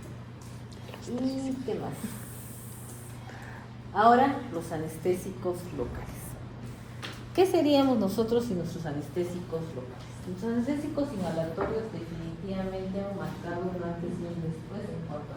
¿Y qué más? Ahora, los anestésicos locales. ¿Qué seríamos nosotros sin nuestros anestésicos locales? Los anestésicos inhalatorios definitivamente han marcado un antes y un después en cuanto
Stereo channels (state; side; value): identical; both; correlation 1.00